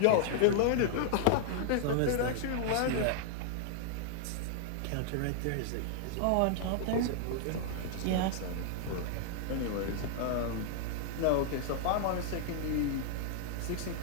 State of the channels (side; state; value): both; different; correlation -0.01